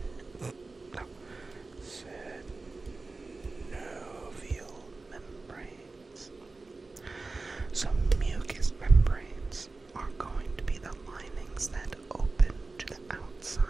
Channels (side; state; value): left; quieter; 3.6 dB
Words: membranes. So mucous membranes are going to be the linings that open to the